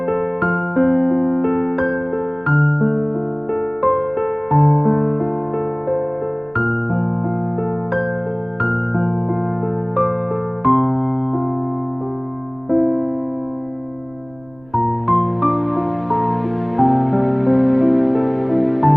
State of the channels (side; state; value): right; noise; rumble, 27 dB below the sound